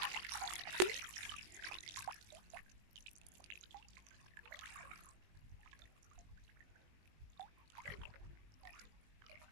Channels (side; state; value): left; late; 19 ms